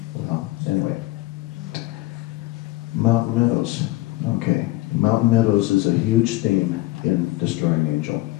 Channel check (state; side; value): quieter; right; 18.8 dB